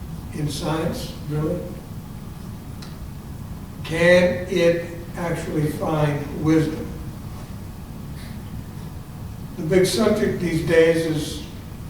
In science, really? Can it actually find wisdom? The big subject these days is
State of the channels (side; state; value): both; identical; correlation 1.00